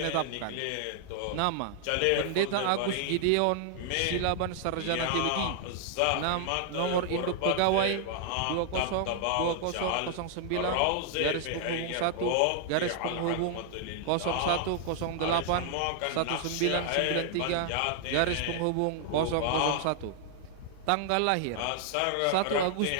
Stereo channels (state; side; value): different; both; correlation 0.00